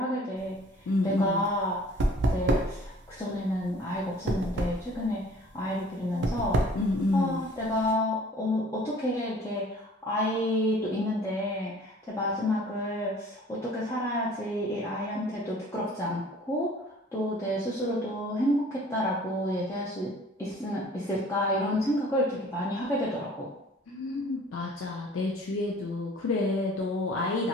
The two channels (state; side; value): normal; both; correlation 0.51